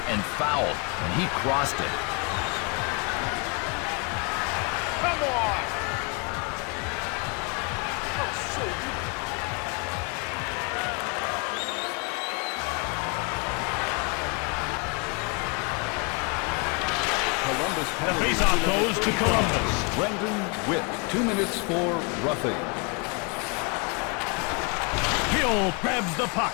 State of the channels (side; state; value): right; quieter; 31.9 dB